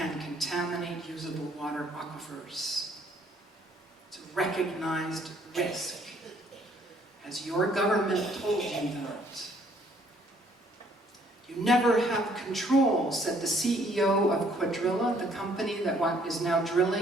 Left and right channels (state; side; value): normal; both; correlation 0.63